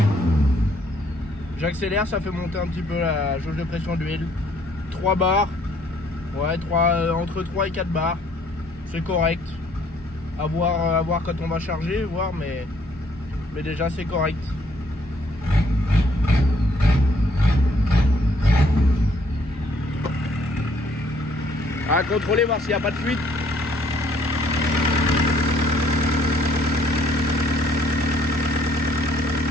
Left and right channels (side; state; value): both; normal; correlation 0.64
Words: J'accélère, ça fait monter un petit peu la jauge de pression d'huile. 3 bars. Ouais, entre 3 et 4 bars. C'est correct. À voir quand on va charger, voir, mais déjà c'est correct. À contrôler, voir s'il n'y a pas de fuite.